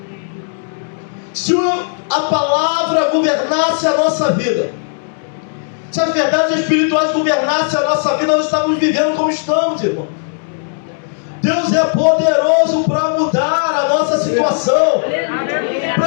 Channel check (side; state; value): right; silent; digital silence